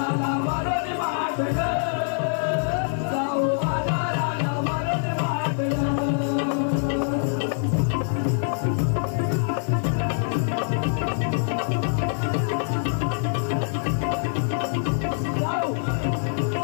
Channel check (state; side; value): silent; right; digital silence